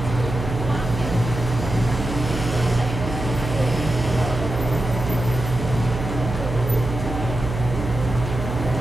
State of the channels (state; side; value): noise; right; hum, 5 dB below the sound